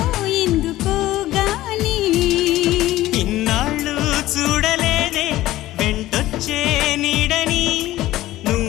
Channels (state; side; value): quieter; right; 15.8 dB